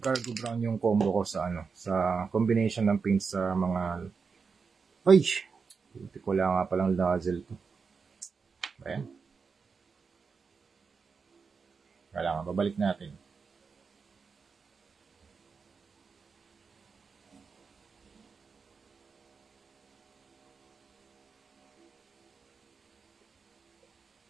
brown yung combo ko sa sa combination ng paint sa mga hindi ko lang nga palang nozzle to. Ayan. Kailangan babalik natin.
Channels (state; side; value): quieter; left; 5.3 dB